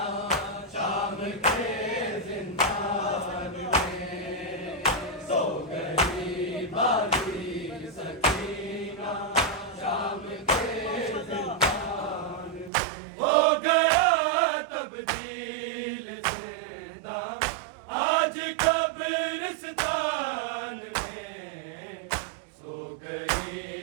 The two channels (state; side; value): drops out; left; at 12.7 s